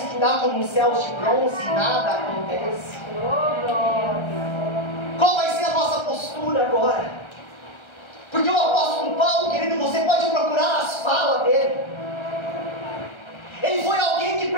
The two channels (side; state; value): right; late; 1.3 ms